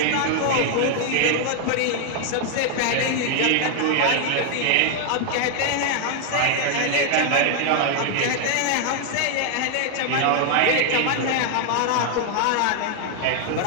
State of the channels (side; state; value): both; different; correlation 0.00